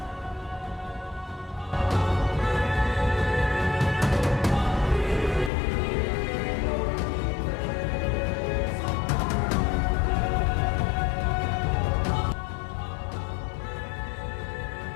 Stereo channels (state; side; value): drops out; right; at 5.5 s